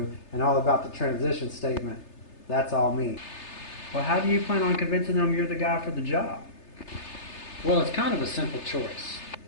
and all about the transition statement. That's all me. Well, how do you plan on convincing them you're the guy for the job? Well, it's kind of a simple choice.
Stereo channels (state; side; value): late; right; 3.3 ms